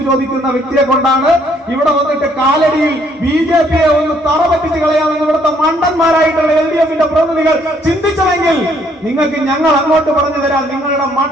ചോദിക്കുന്ന വ്യക്തിയെ കൊണ്ടാണ് ഇവിടെ വന്നിട്ട് കാലടിയിൽ BJP ഒന്ന് തറ പറ്റിച്ച് കളയാമെന്ന് ഇവിടുത്തെ മണ്ടന്മാരായിട്ടുള്ള LDF-ന്റെ പ്രതിനിധികൾ ചിന്തിച്ചതെങ്കിൽ നിങ്ങൾക്ക് ഞങ്ങൾ അങ്ങോട്ട് പറഞ്ഞു തരാം. നിങ്ങളുടെ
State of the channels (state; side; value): normal; both; correlation 0.67